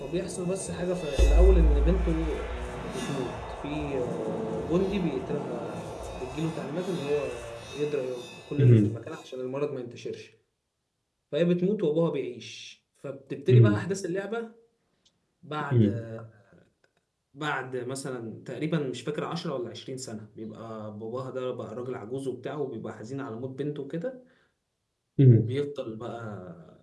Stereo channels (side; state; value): both; identical; correlation 1.00